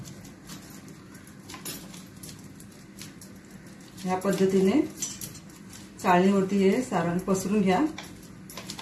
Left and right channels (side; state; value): both; identical; correlation 1.00